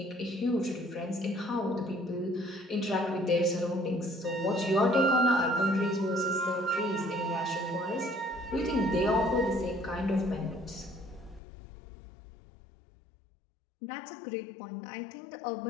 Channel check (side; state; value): right; drops out; at 11.4 s